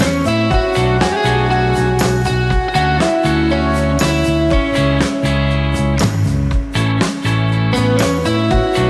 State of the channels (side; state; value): both; identical; correlation 1.00